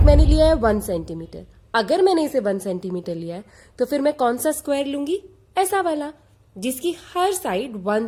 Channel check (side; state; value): both; identical; correlation 1.00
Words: मैंने लिया है 1 सेंटीमीटर। अगर मैंने इसे 1 सेंटीमीटर लिया है तो फिर मैं कौन सा स्क्वायर लूंगी? ऐसा वाला, जिसकी हर साइड 1